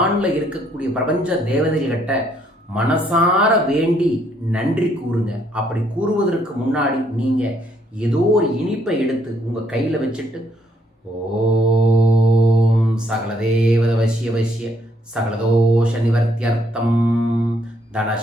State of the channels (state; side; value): normal; both; correlation 0.70